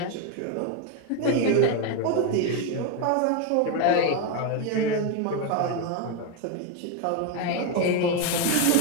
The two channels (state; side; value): different; both; correlation 0.02